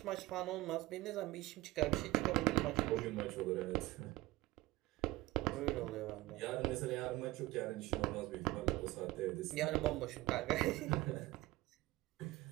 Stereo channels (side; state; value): left; quieter; 18.9 dB